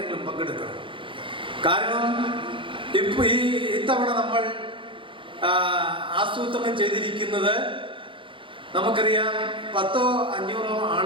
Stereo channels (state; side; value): late; left; 0.25 ms